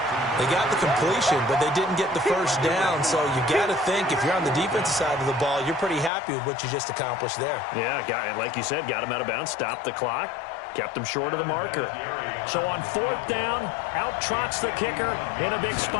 They got the completion, but they didn't get the 1st down, so you got to think if you're on the defensive side of the ball, you're pretty happy with what you just accomplished there. Yeah, like you said, got him out of bounds, stopped the clock, kept him short of the marker. So on 4th down, out trots the kicker in a big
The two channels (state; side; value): drops out; right; at 6.1 s